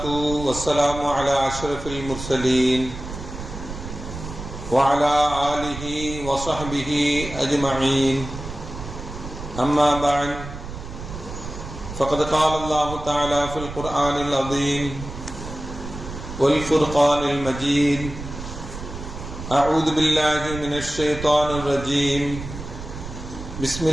wassalamu ala ashrafil mursalin wa ala alihi wa sahbihi ajma'in. Amma ba'd. فقد قال الله تعالى في القرآن العظيم والفرقان المجيد أعوذ بالله من الشيطان الرجيم بسم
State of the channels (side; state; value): right; noise; rumble, 10 dB below the sound